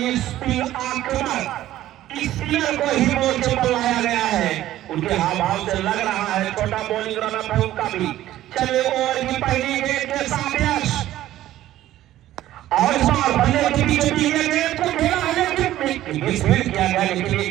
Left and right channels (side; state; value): left; quieter; 13.9 dB